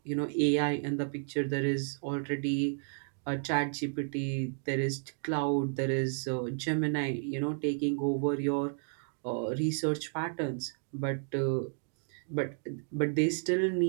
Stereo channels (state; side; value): silent; left; digital silence